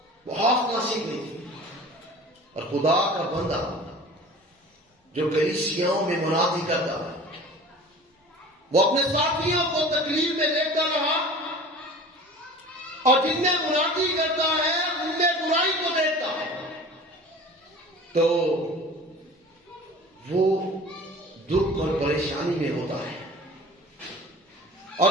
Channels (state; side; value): normal; both; correlation 0.41